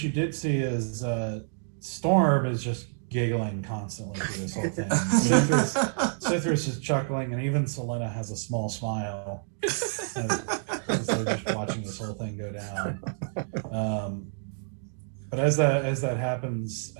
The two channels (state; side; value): silent; left; digital silence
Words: did see is Storm is just giggling constantly through this whole thing. Cithras is chuckling, and even Selena has a small smile as they're just watching this whole thing go down. But as that happens,